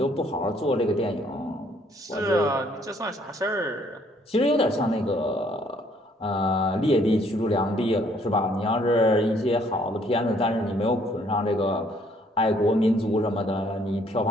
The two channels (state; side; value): normal; both; correlation 0.64